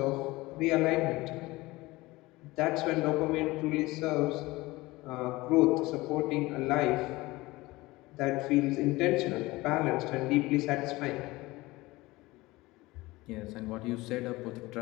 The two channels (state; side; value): quieter; right; 20.5 dB